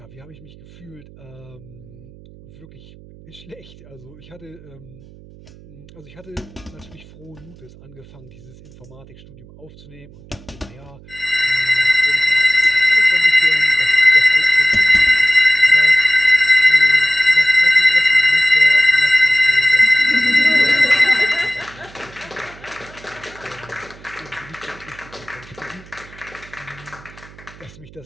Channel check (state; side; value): noise; right; hum, 22 dB below the sound